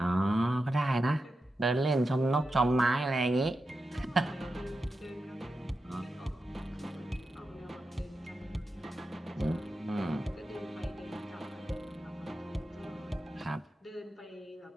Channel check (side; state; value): both; normal; correlation 0.90